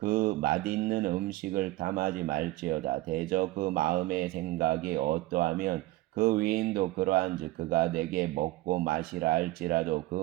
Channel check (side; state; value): left; quieter; 18.2 dB